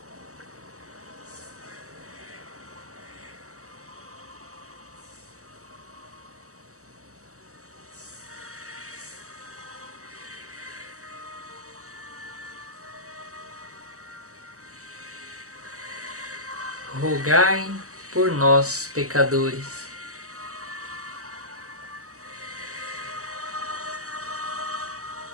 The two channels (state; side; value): late; left; 0.65 ms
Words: rogai por nós, pecadores,